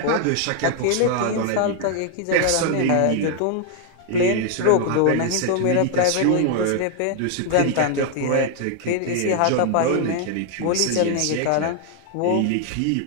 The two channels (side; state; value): both; different; correlation 0.00